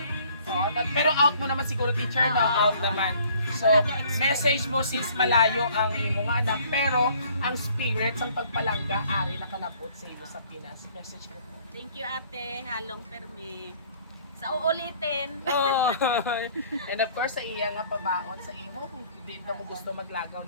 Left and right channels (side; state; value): both; inverted; correlation -0.57